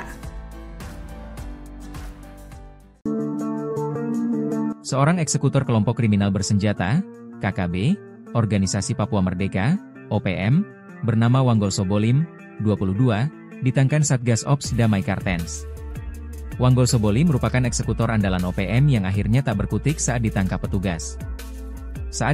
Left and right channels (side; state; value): both; identical; correlation 1.00